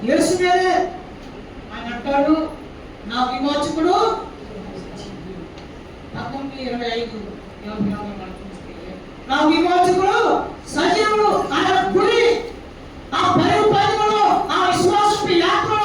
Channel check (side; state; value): both; identical; correlation 1.00